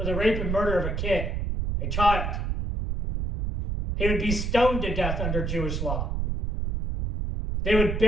the rape and murder of a child. He would be stoned to death under Jewish law. They would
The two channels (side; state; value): right; noise; rumble, 1 dB below the sound